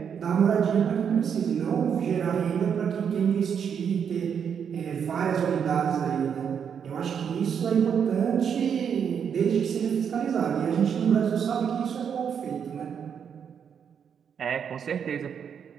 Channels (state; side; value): quieter; left; 7.5 dB